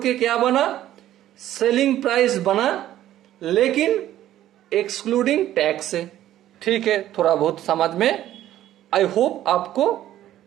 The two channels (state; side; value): quieter; left; 12.9 dB